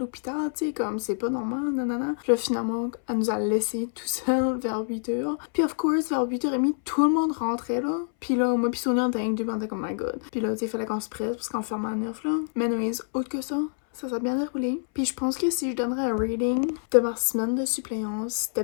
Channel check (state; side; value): silent; right; 60 dB below the other